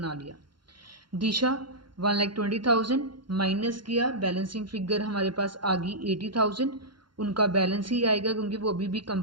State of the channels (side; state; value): left; late; 0.72 ms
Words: लिया। दिशा 1,20,000 माइनस किया, बैलेंसिंग फिगर हमारे पास आ गई 80,000, उनका बैलेंस ही आएगा क्योंकि वो अभी भी